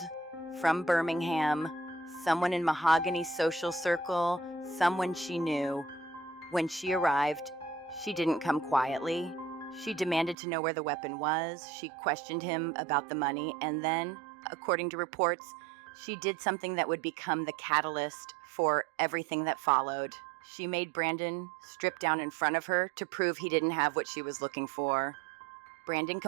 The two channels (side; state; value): left; drops out; at 10.4 s